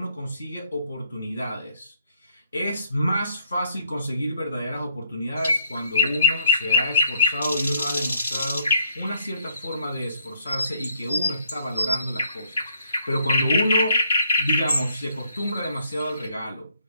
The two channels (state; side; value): inverted; both; correlation -0.67